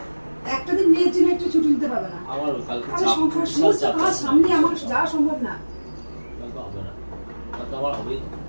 একটা দিন মেয়ের জন্য একটু ছুটি নিতে পারবে না? আমার কালকে আমি চাপ, সংসার বিশাল সমস্ত চাপ কাজ আছে। সামনে আমার যাওয়া সম্ভব না। কালকে হবে না, কালকে আমার হবেই না।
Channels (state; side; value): inverted; both; correlation -1.00